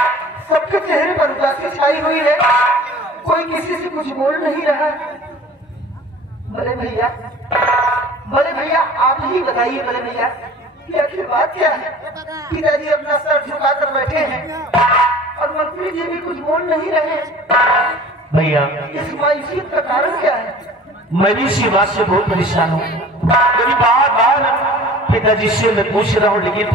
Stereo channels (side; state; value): both; normal; correlation 0.44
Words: सबके चेहरे पर उदासी छाई हुई है, कोई किसी से कुछ बोल नहीं रहा। बड़े भैया आप ही बताइए बड़े भैया कि आखिर बात क्या है? पिताजी अपना सर झुकाकर बैठे हैं और मंत्री जी भी कुछ बोल नहीं रहे। भैया इस मायूसियत का कारण क्या है? मैं भी इसी बात से बहुत परेशान हूँ। मेरी बार पिताजी से मैं पूछ रहा हूँ, लेकिन